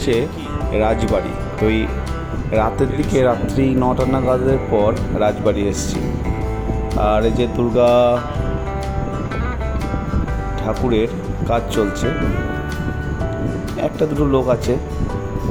রাজবাড়ি। তো এই রাতের দিকে, রাত্রি 9টা নাগাদের পর রাজবাড়ি এসেছি। আর এই যে দুর্গা ঠাকুরের কাজ চলছে, একটা দুটো লোক আছে।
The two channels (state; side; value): identical; both; correlation 1.00